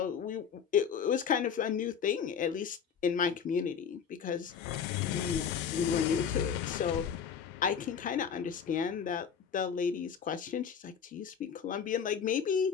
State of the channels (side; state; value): right; quieter; 7.3 dB